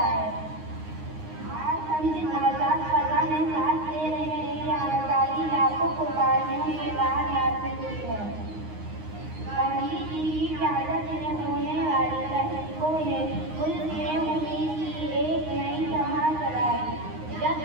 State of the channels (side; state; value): left; late; 9.6 ms